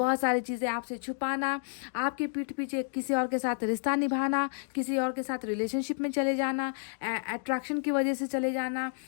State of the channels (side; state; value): right; silent; digital silence